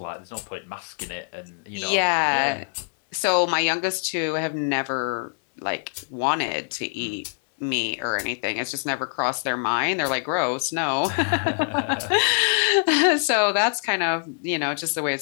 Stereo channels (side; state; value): right; silent; digital silence